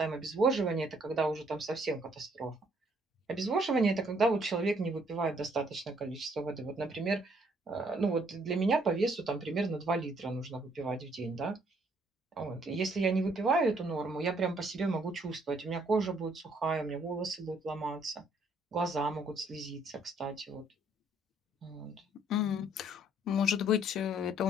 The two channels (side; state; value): both; normal; correlation 0.66